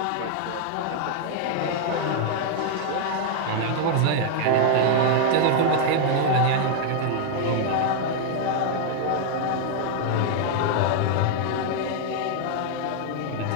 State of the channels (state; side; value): different; both; correlation 0.00